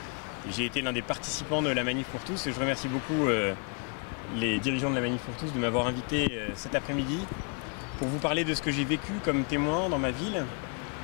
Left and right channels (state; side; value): quieter; right; 38.2 dB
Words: et j'ai été l'un des participants de la Manif pour tous et je remercie beaucoup les dirigeants de la Manif pour tous de m'avoir invité cet après-midi pour vous parler de ce que j'ai vécu comme témoin dans ma ville.